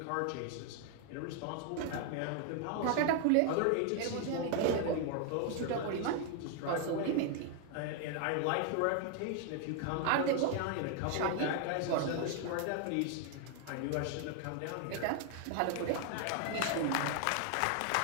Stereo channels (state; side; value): different; both; correlation 0.00